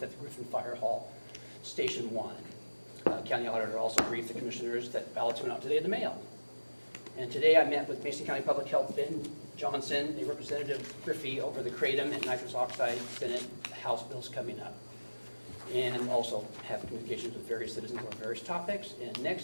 at the Griffin Fire Hall, Station 1. County auditor also briefed the commissioners that ballots went out today in the mail. And today I met with Mason County Public Health Ben Johnson, a Representative Griffey, over the kratom and nitrous oxide Senate House bills coming up. And also have communications with various citizens on various topics. And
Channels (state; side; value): inverted; both; correlation -1.00